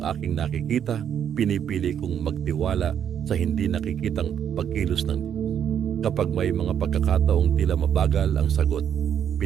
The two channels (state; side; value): quieter; left; 8.9 dB